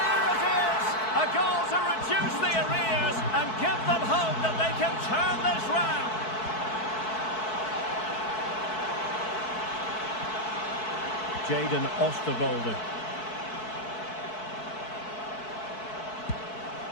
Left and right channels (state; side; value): late; right; 4.6 ms